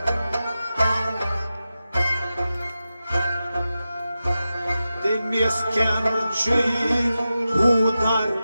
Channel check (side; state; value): both; inverted; correlation -0.92